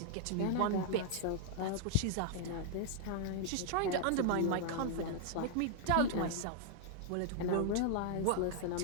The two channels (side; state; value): both; different; correlation -0.01